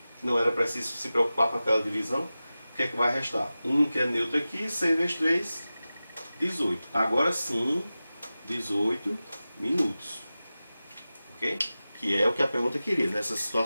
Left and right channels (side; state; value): both; inverted; correlation -0.95